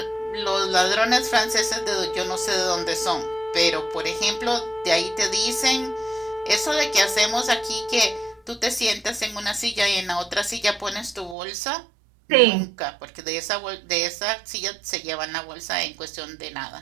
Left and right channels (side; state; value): left; drops out; at 11.4 s